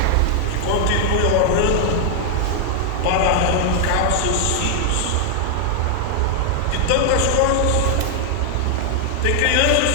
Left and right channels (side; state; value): both; different; correlation 0.00